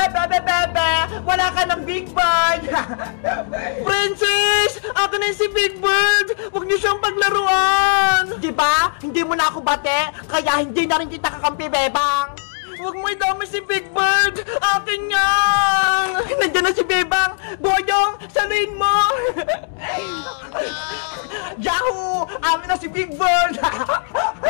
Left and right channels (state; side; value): silent; right; digital silence